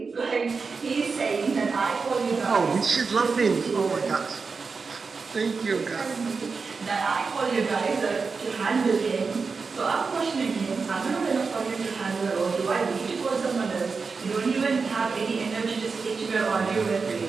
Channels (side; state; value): left; quieter; 4.8 dB